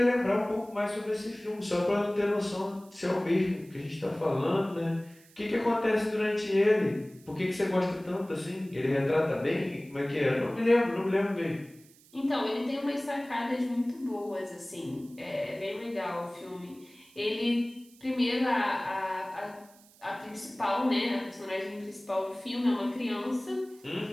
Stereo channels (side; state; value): right; noise; hiss, 26 dB below the sound